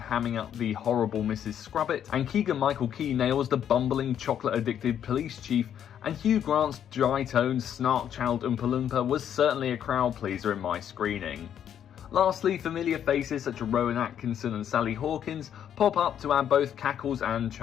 up the horrible Mrs. Scrubbit, and Keegan-Michael Key nails the bumbling, chocolate-addicted police chief, and Hugh Grant's dry-toned, snark-channeled Oompa Loompa was certainly a crowd-pleaser in my screening. Lastly, familiar faces such as Rowan Atkinson and Sally Hawkins pop up to add both cackles and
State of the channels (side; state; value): right; quieter; 9.5 dB